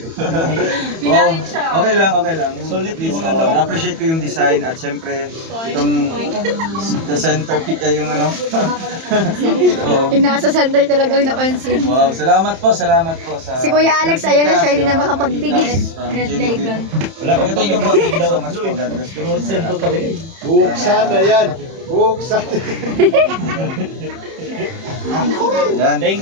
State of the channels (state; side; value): late; left; 31 ms